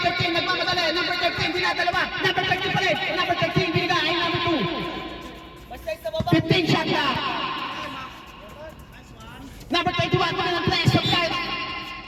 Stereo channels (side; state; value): both; identical; correlation 1.00